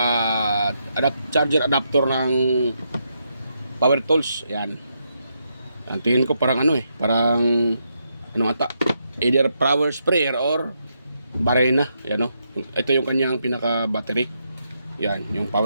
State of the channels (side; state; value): both; inverted; correlation -0.80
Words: charger adapter ng power tools. Ayan, yan, tingin ko parang parang ano ata, either power sprayer or barena. Ayan o, ito yung kanyang pinaka battery. Yan, yung